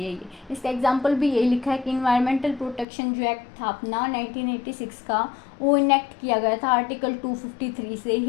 है ये। इसका एग्जांपल भी यही लिखा है कि इन्वायरमेंटल प्रोटेक्शन जो एक्ट था अपना 1986 का, वो इनेक्ट किया गया था आर्टिकल 253 से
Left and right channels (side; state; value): right; drops out; at 2.9 s